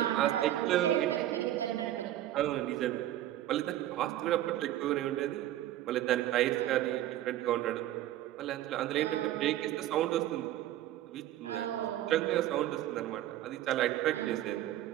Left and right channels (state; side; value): quieter; left; 13.5 dB